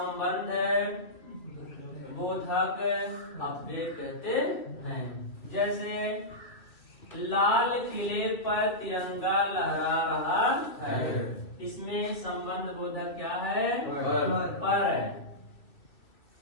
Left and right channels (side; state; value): right; late; 2.5 ms